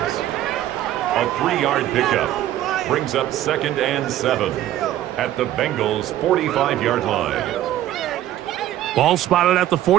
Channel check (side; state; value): left; quieter; 13.1 dB